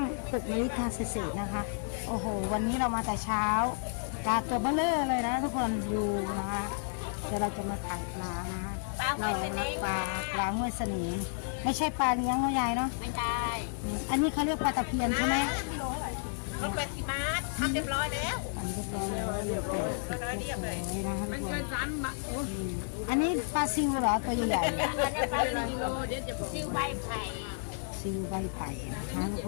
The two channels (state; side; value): silent; right; 57 dB below the other